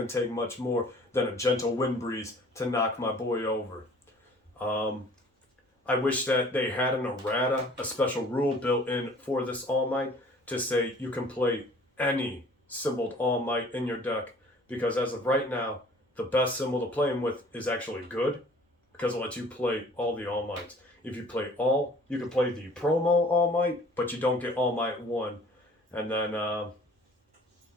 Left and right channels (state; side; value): normal; both; correlation 0.51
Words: to take much more than a gentle wind breeze to knock my boy over. I wish that they had an errata, a special rule built in for this All Might, to say you can play any symboled All Might in your deck. Because as of right now, the best symbol to play him with is actually good, because it lets you play all the All Mights. If you play all, you can play the promo All Might, but you don't get All Might 1. And then